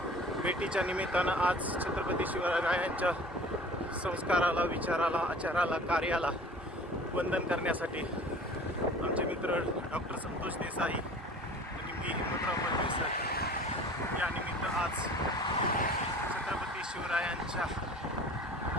भेटीच्या निमित्तानं आज छत्रपती शिवरायांच्या संस्काराला, विचाराला, आचाराला, कार्याला वंदन करण्यासाठी आमचे मित्र डॉक्टर संतोष देसाई आणि मी हिम्मतराव मलमे सर या निमित्त आज छत्रपती शिवरायांच्या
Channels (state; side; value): normal; both; correlation 0.45